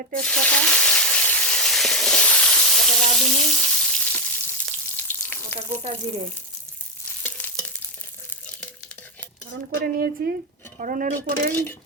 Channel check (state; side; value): normal; both; correlation 0.07